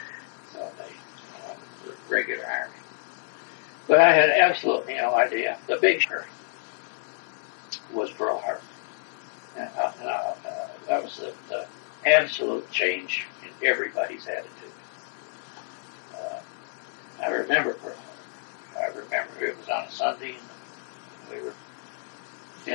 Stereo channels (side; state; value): right; silent; 59 dB below the other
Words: So they the regular army. But I had absolutely no idea. The big shock was Pearl Harbor. And that was the absolute change in everybody's attitude. I remember Pearl Harbor. I remember it was on a Sunday, and we were